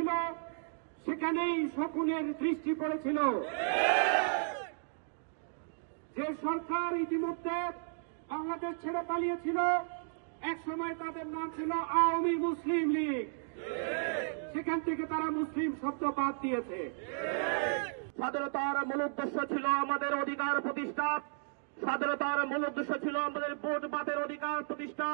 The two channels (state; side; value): silent; left; digital silence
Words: সেখানেই শকুনের দৃষ্টি পড়েছিল। যে সরকার ইতিমধ্যে বাংলাদেশ ছেড়ে পালিয়েছিল, এক সময় তাদের নাম ছিল আওয়ামী মুসলিম লীগ, সেখান থেকে তারা মুসলিম শব্দ বাদ দিয়েছে। স্বাধীনতার মূল উদ্দেশ্য ছিল আমাদের অধিকার প্রতিষ্ঠা, স্বাধীনতার মূল উদ্দেশ্য ছিল আমাদের ভোট বাতের অধিকার প্রতিষ্ঠা,